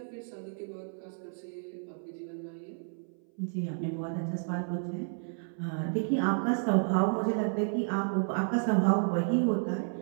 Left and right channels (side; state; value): left; silent; 57 dB below the other